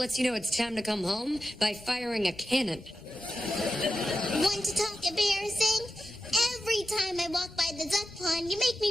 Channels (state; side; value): normal; both; correlation 0.92